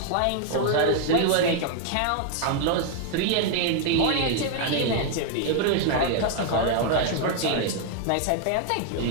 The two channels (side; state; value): both; different; correlation 0.00